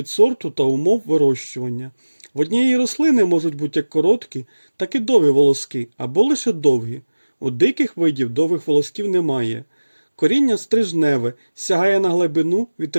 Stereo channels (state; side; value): inverted; both; correlation -1.00